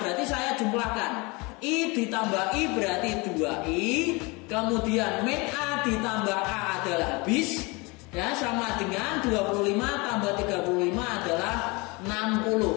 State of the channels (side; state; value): right; quieter; 26.6 dB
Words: saya jumlahkan. I ditambah I berarti 2I, kemudian min A ditambah A adalah habis, ya, sama dengan 25 tambah 35 adalah